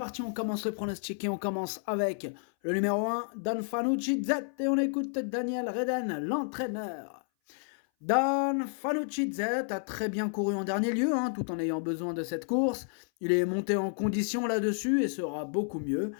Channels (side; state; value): right; silent; 57 dB below the other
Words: on commence le pronostic et on commence avec le numéro 1, Don Fanucci Z, et on écoute Daniel Reden, l'entraîneur. Dan Fanucci Z a très bien couru en dernier lieu, tout en ayant besoin de cette course. Il est monté en condition là-dessus et sera beaucoup mieux.